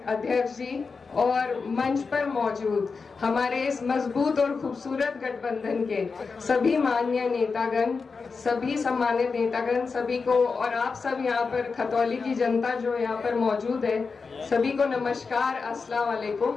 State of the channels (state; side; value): quieter; right; 4.8 dB